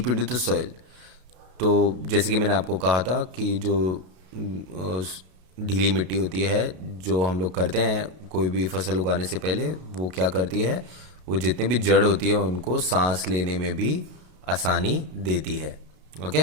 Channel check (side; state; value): left; late; 32 ms